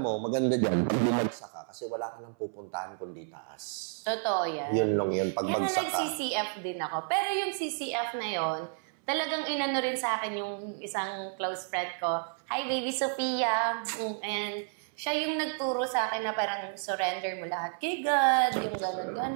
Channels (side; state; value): left; silent; 57 dB below the other